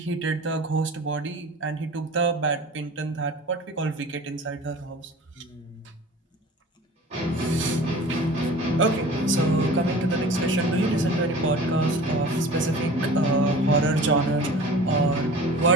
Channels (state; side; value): normal; both; correlation 0.40